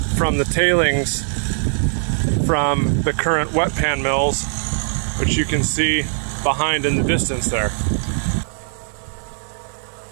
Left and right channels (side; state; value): left; silent; digital silence